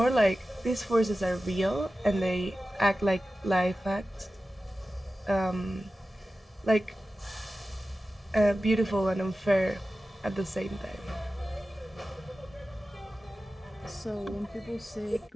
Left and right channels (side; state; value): both; normal; correlation 0.94